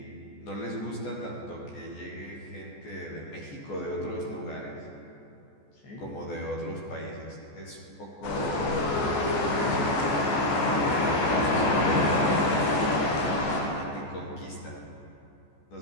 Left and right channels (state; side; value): late; right; 14 ms